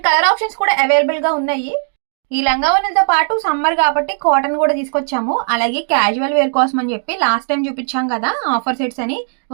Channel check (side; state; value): left; silent; digital silence